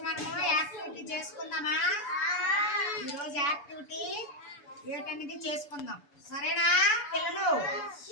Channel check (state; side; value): late; right; 6.9 ms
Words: మనము activity చేసుకుందామా? ఈ రోజు యాక్టివిటీ ఏంటనేది చేసుకుందాం. సరేనా పిల్లలు?